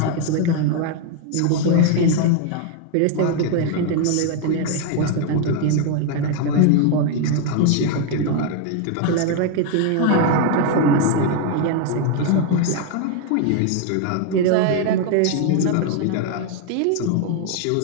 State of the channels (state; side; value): different; both; correlation 0.01